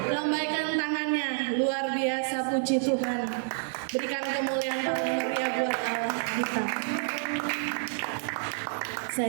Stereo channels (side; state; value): left; silent; digital silence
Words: Lambaikan tangannya. Luar biasa, puji Tuhan. Berikan kemuliaan paling meriah buat Allah kita.